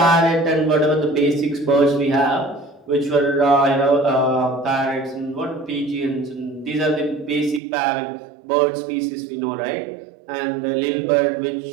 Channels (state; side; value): drops out; left; at 7.6 s